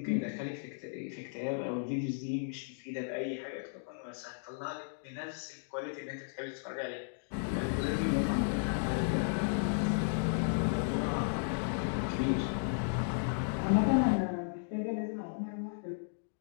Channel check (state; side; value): silent; right; digital silence